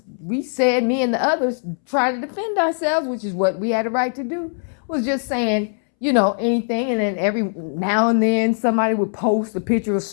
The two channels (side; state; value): right; silent; 65 dB below the other